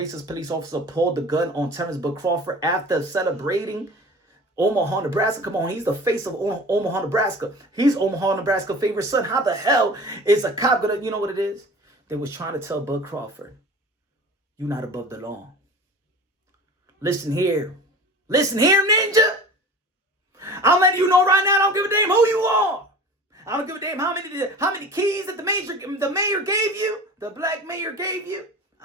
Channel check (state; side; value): normal; both; correlation 0.39